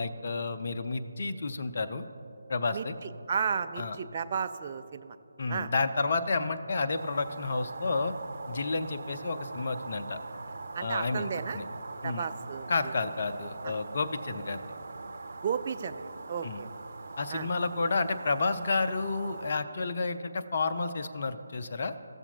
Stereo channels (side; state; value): both; inverted; correlation -0.82